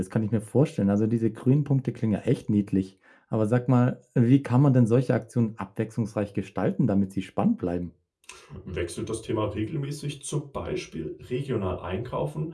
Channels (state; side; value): identical; both; correlation 1.00